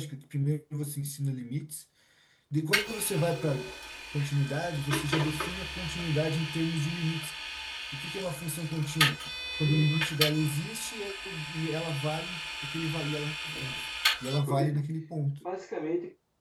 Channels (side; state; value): both; identical; correlation 1.00